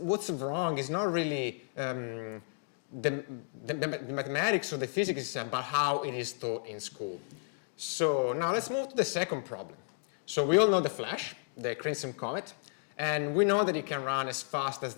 wrong is not really the mathematics or the physics itself, but how it is taught in school. So now let's move to the second problem. So we all know the Flash, the Crimson Comet, and we know that it can run as fast as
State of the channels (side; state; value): right; silent; digital silence